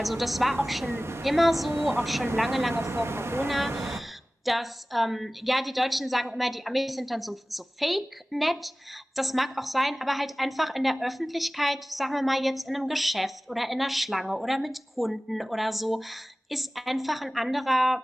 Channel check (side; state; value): both; normal; correlation 0.98